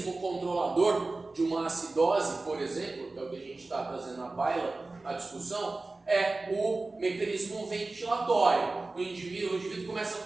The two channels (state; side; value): quieter; left; 3.3 dB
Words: controlador de uma acidose, por exemplo, que é o que a gente está trazendo na baila, a discussão, é o mecanismo ventilatório. O indivíduo começa a